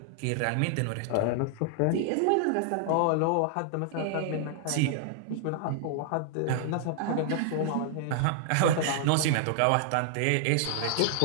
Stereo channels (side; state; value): both; different; correlation -0.01